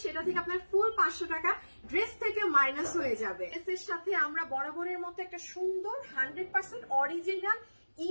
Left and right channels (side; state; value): both; inverted; correlation -1.00